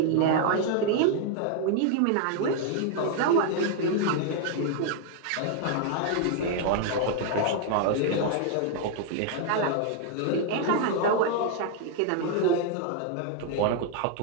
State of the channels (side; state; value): both; different; correlation 0.00